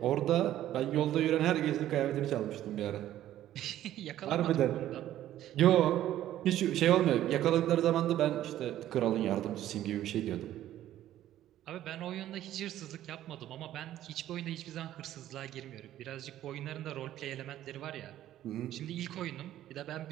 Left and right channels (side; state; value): left; quieter; 12.8 dB